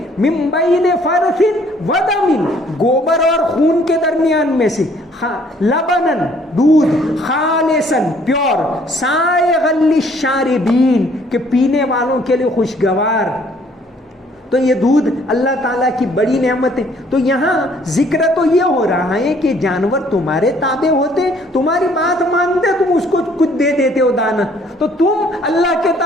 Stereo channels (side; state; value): both; normal; correlation 0.61